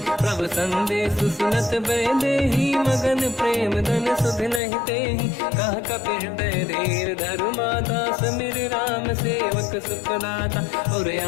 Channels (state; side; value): drops out; right; at 4.6 s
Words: प्रभु संदेश सुनत बैदेही मगन प्रेम धन सुध नहीं तेहि कह कपिल धीर धरु माता समिर राम सेवक सुखदाता और